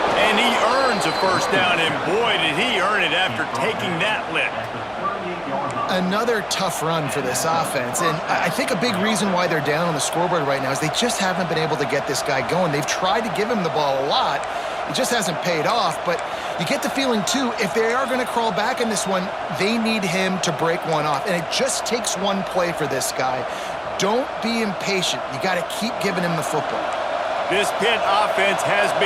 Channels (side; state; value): both; identical; correlation 1.00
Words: And he earns a first down, and boy, did he earn it after taking that lick. Another tough run for this offense, and I think a big reason why they're down on the scoreboard right now is they just haven't been able to get this guy going. They've tried to give him the ball a lot. It just hasn't paid off, but you get the feeling, too, if they are going to crawl back in this one, they need him to break one off, and it just takes one play for this guy. Don't be impatient. You got to keep giving him the football. This Pitt offense has